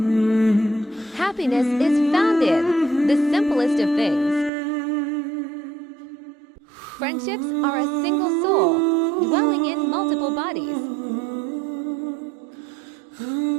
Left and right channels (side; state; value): left; drops out; at 4.5 s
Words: Happiness is found in the simplest of things. Friendships are a single soul dwelling in multiple bodies.